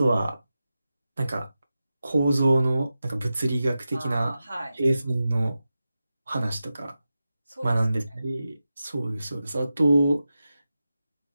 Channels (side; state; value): both; inverted; correlation -0.92